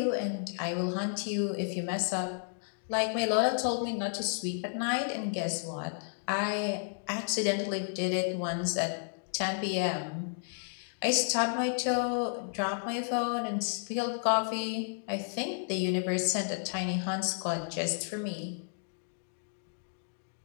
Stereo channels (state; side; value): silent; right; digital silence